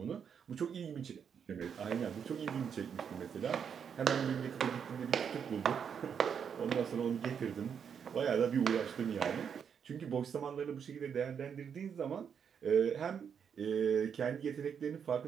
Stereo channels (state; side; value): quieter; left; 7.4 dB